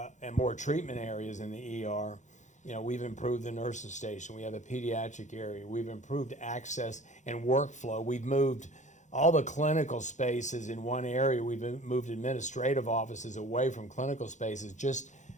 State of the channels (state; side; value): late; right; 0.35 ms